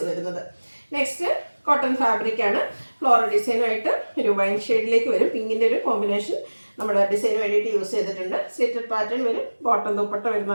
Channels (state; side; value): inverted; both; correlation -1.00